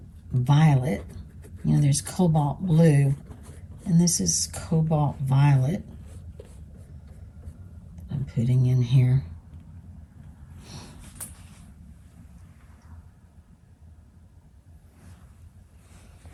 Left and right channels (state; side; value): identical; both; correlation 1.00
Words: violet. You know, there's cobalt blue, and this is cobalt violet I'm putting in here.